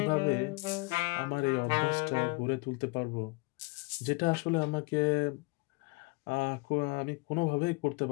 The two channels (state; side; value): quieter; right; 26.0 dB